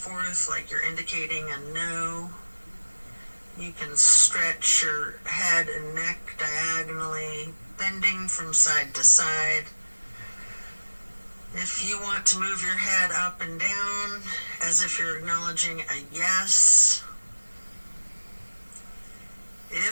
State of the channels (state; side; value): inverted; both; correlation -1.00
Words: like you're indicating a no. You can stretch your head and neck diagonally, bending from side to side. If you want to move your head up and down as if you're acknowledging a yes.